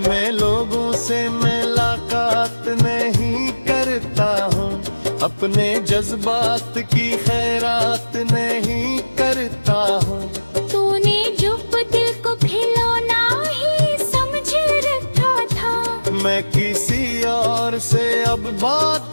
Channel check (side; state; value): both; inverted; correlation -1.00